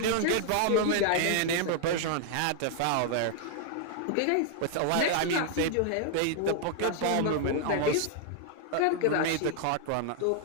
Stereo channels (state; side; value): different; both; correlation 0.00